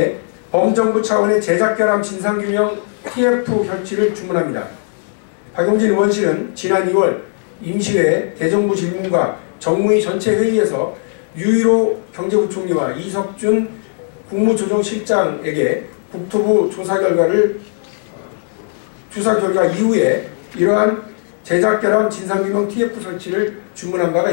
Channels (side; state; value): right; silent; 68 dB below the other